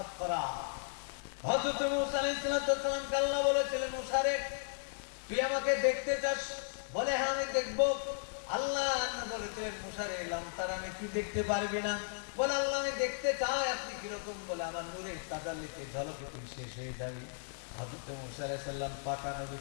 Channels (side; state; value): right; silent; digital silence